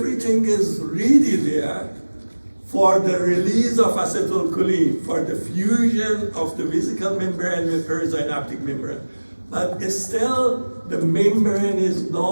is really there for the release of acetylcholine, for the fusion of the vesicle membrane with perisynaptic membrane. But still, the membrane is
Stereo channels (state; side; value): inverted; both; correlation -1.00